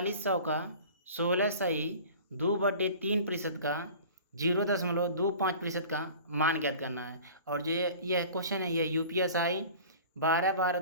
का 16 सही 2/3% का 0.25% का मान ज्ञात करना है। और जो यह क्वेश्चन है यह UPSI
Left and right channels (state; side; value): inverted; both; correlation -0.42